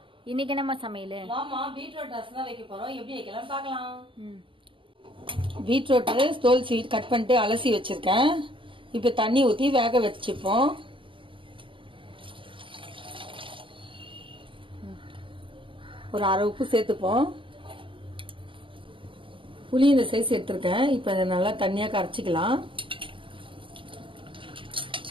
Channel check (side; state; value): left; late; 0.25 ms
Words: இன்னைக்கு என்னம்மா சமையல்? மாமா பீட்ரூட் ரசம் தான் வைக்க போறோம். எப்படி வைக்கலாம் பார்க்கலாம். பீட்ரூட் தோல் சீட் கட் பண்ணிட்டு அலசி வச்சிருக்கேன். இப்ப தண்ணி ஊத்தி வேக வச்சுப்போம். ஒரு அரை உப்பு சேர்த்துப்போம். புளி இந்த சைஸ் எடுத்திருக்கேன். இப்ப இதை நல்லா தண்ணியா கரைச்சிக்கலாம்.